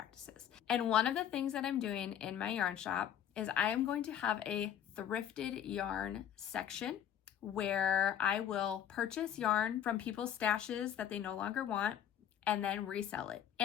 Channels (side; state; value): right; quieter; 9.9 dB